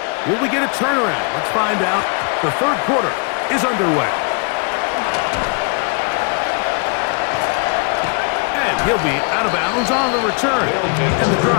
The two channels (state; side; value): quieter; right; 36.8 dB